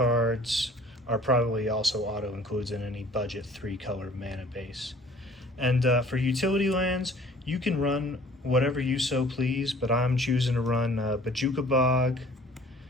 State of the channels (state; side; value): normal; both; correlation 0.52